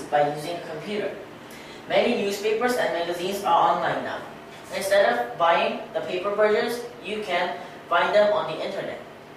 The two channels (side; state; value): both; identical; correlation 1.00